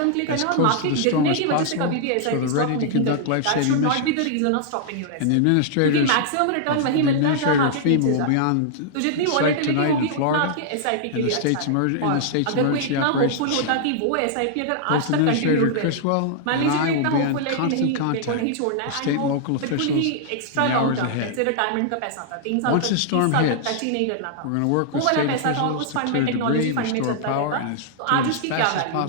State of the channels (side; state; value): both; different; correlation -0.01